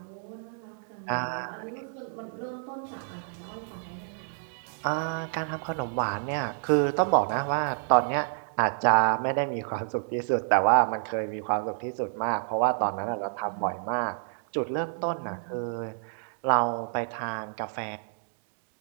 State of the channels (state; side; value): silent; left; digital silence